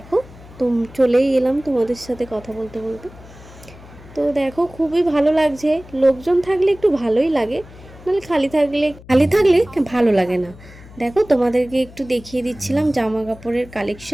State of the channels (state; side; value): noise; left; hum, 20 dB below the sound